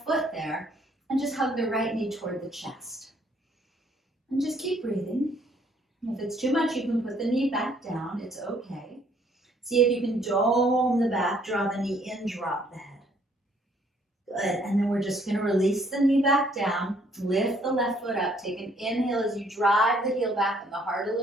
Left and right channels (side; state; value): both; normal; correlation 0.65